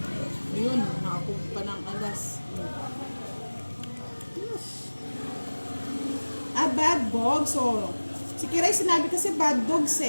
Ayun, nakakuha pa ng alas. Ah, bad dogs. So, si Kiray sinabi kasi bad dogs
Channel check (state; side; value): inverted; both; correlation -1.00